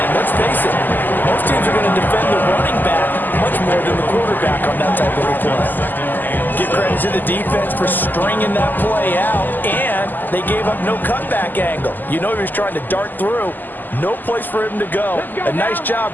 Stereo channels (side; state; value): right; late; 0.088 ms